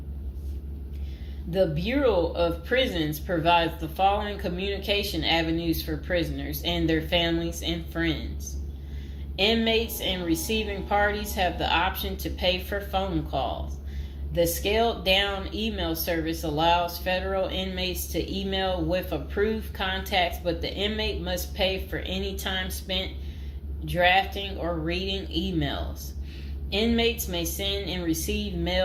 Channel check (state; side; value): identical; both; correlation 1.00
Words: The Bureau of Prisons provides the following communication avenues for prisoners and their families and friends. Inmates and receiving parties have the option to pay for phone calls. The scaled-down email service allows federal inmates to email with approved contacts, but the inmate must pay for any time spent drafting or reading emails. Inmates may send and receive